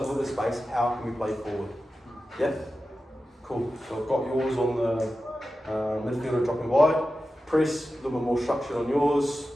with the space, how can we play forward? Yeah? Cool. So I've got yours on the midfielder dropping wide. Press, a little bit more structure on yours.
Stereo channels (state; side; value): normal; both; correlation 0.93